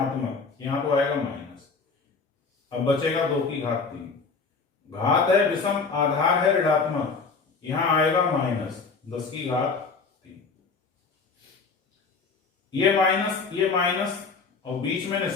यहां तो आएगा माइनस। अब बचेगा 2 की घात 3। घात है विषम, आधार है ऋणात्मक, यहां आएगा -10 की घात 3। ये माइनस और बीच में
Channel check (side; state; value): right; quieter; 4.7 dB